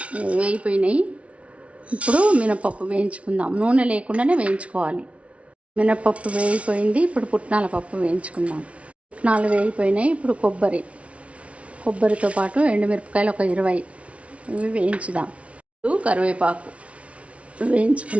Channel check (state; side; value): late; left; 0.063 ms